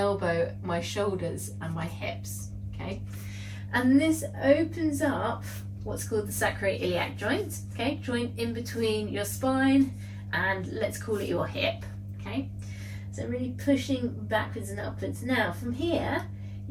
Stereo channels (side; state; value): both; identical; correlation 1.00